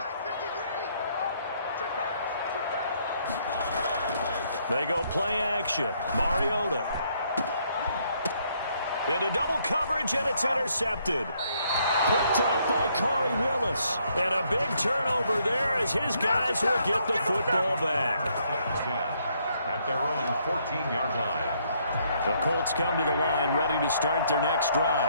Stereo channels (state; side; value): inverted; both; correlation -0.70